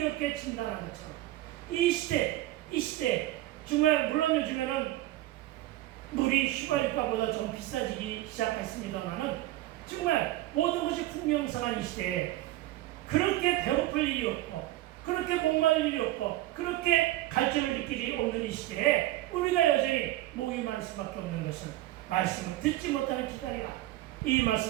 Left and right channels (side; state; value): left; quieter; 16.0 dB